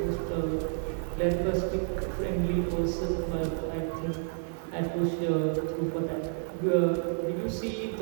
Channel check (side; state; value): left; silent; digital silence